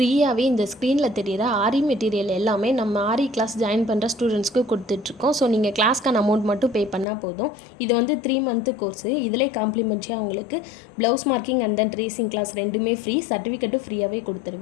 இந்த ஸ்க்ரீனில் தெரிகிற ஆரி மெட்டீரியல் எல்லாமே நம்ம ஆரி கிளாஸ் ஜாயின் பண்ணுற ஸ்டூடெண்ட்ஸ்க்கு கொடுத்துட்ருக்கோம். ஸோ நீங்கள் கிளாஸ்க்கான அமௌண்ட் மட்டும் பே பண்ணால் போதும். இது வந்து 3 மந்த்து கோர்ஸு. இதிலே காம்ப்ளிமெண்ட்ரியாக உங்களுக்கு blouse marking and then tracing class ரெண்டுமே ஃப்ரீ, சர்டிஃபிகேட்டும் ஃப்ரீயாகவே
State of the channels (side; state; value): right; drops out; at 7.1 s